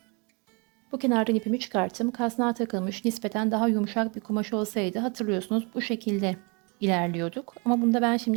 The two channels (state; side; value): quieter; left; 31.2 dB